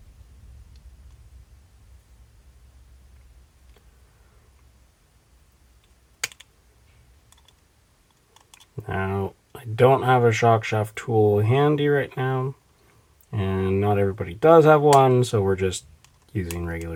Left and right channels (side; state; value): both; identical; correlation 1.00